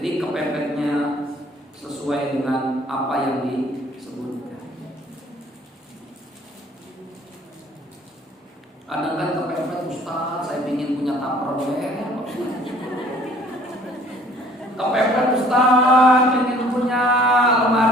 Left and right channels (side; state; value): both; normal; correlation 0.56